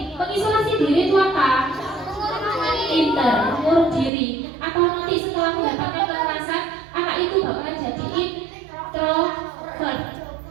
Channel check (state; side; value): drops out; left; at 4.1 s